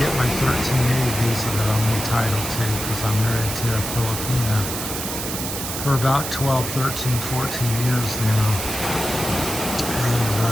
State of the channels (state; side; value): noise; right; hiss, 5 dB below the sound